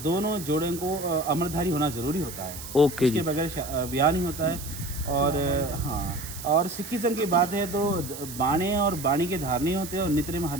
जोड़ों को अमरधारी होना ज़रूरी होता है। ओके जी। इसके बगैर ब्याह नहीं होता है। और हाँ, और सिखिज्म की बात है तो बाणे और बाणी के धारणी होते हैं, और नित्य में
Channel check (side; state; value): right; noise; hiss, 11 dB below the sound